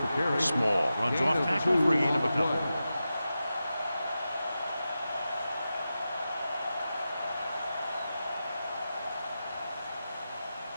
Small runs off tackle for a gain of a couple.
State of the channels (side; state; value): both; inverted; correlation -0.91